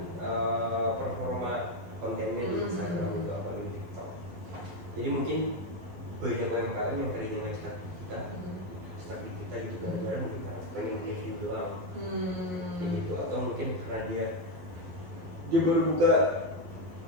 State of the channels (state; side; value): late; left; 11 ms